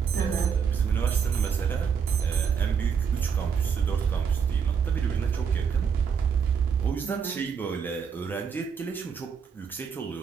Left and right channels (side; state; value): left; quieter; 6.7 dB